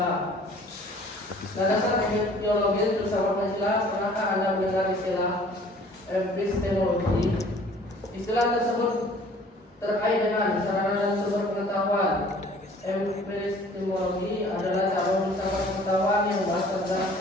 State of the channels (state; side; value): normal; both; correlation 0.52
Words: Landasan epistemologis filsafat Pancasila, pernahkah Anda mendengar istilah epistemologi? Istilah tersebut terkait dengan sarana dan sumber pengetahuan. Epistemologi adalah cara filsafat pengetahuan yang berdasar pada